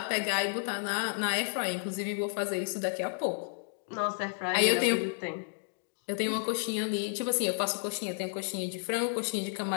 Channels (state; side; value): silent; right; digital silence